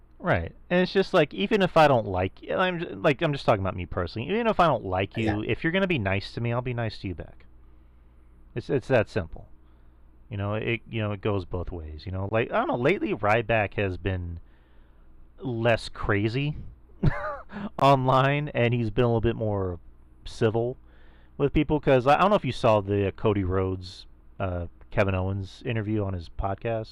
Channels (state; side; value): identical; both; correlation 1.00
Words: Right, and it's just like, even if I don't like you, I'm just talking about me personally. Even if I don't like you, if you're gonna be nice to me, I'll be nice to you back. It's that simple. It goes both ways. Like, I don't know. Lately, Ryback has been less crazy online, and he's been a little bit more civil with people. Because I don't know if you saw the Cody Rhodes, Kevin Owens interview on his